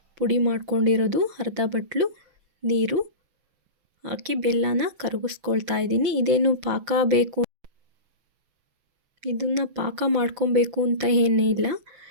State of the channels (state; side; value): late; left; 6.1 ms